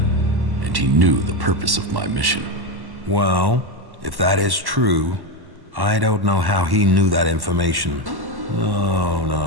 and he knew the purpose of my mission. Well, if that is true, I don't know how he knew that information.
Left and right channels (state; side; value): late; left; 1.1 ms